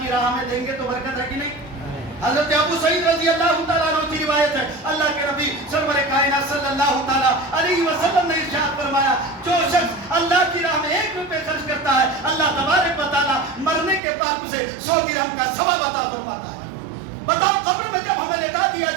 کی راہ میں دیں گے تو برکت ہے کہ نہیں؟ حضرت ابو سعید رضی اللہ تعالیٰ عنہ کی روایت ہے، اللہ کے نبی سرور کائنات صلی اللہ تعالیٰ علیہ وسلم نے ارشاد فرمایا، جو شخص اللہ کی راہ میں 1 روپے خرچ کرتا ہے، اللہ تبارک و تعالیٰ مرنے کے بعد اسے 100 درہم کا ثواب عطا فرماتا ہے۔ بتاؤ قبر میں جب ہمیں لٹا دیا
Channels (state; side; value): drops out; left; at 14.0 s